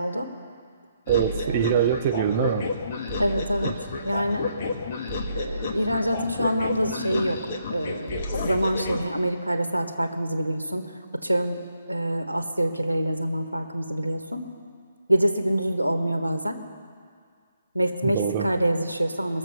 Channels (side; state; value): both; inverted; correlation -0.79